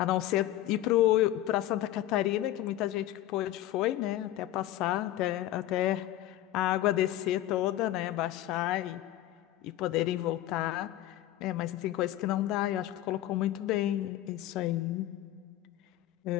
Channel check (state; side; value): quieter; right; 13.8 dB